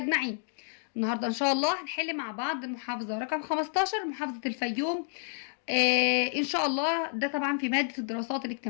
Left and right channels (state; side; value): silent; right; 58 dB below the other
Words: النهاردة إن شاء الله هنحل مع بعض المحافظة رقم 15، محافظة الفيوم. إن شاء الله ده طبعا في مادة الدراسات